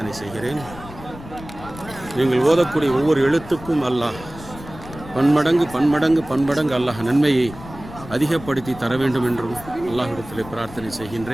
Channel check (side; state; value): left; noise; rumble, 15 dB below the sound